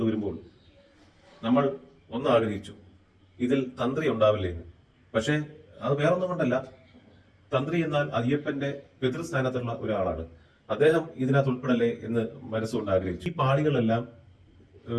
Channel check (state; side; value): identical; both; correlation 1.00